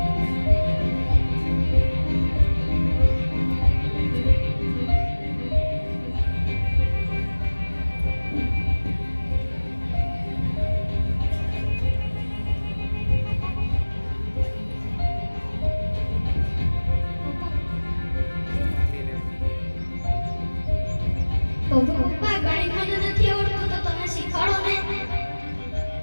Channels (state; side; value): inverted; both; correlation -1.00